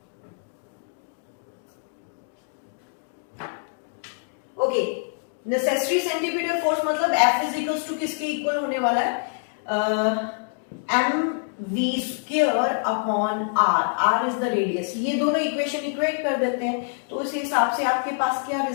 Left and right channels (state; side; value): silent; right; digital silence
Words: okay, necessary centripetal force मतलब F इज इक्वल्स टू किसके इक्वल होने वाला है, mv² upon r, r is the radius. ये दोनों इक्वेशन इक्वेट कर देते हैं, तो उस हिसाब से आपके पास क्या